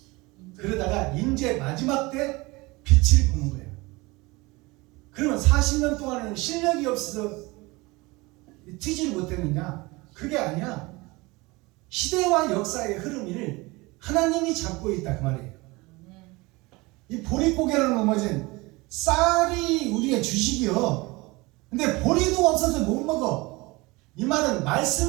그러다가 이제 마지막 때 빛을 보는 거예요. 그러면 40년 동안은 실력이 없어서 튀지를 못했느냐? 그게 아니야. 시대와 역사의 흐름을 하나님이 잡고 있다 그 말이에요. 이 보릿고개를 넘어진 쌀이 우리의 주식이요. 근데 보리도 없어서 못 먹어. 이 말은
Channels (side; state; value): left; quieter; 23.3 dB